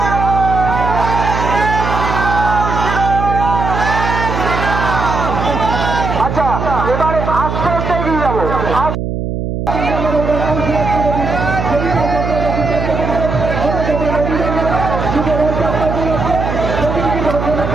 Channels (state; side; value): noise; right; hum, 3 dB below the sound